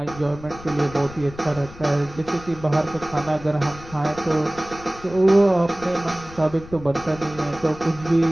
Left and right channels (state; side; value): noise; left; rumble, 17 dB below the sound